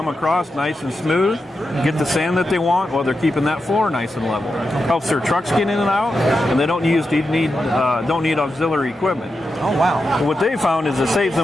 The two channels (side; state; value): both; normal; correlation 0.89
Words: across nice and smooth, get the sand that they want while they're keeping that floor nice and level. Helps their trucks get in and out, and they don't need auxiliary equipment. Oh, wow. What they found is it saves